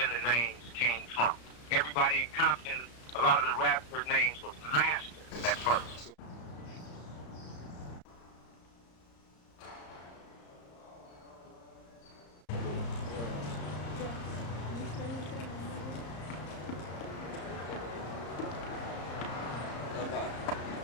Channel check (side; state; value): right; late; 34 ms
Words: the names came from. Everybody in Compton, a lot of the rappers' names was Master at first.